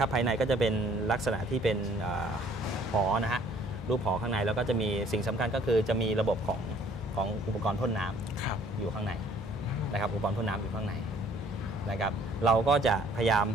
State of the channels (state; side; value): normal; both; correlation 0.58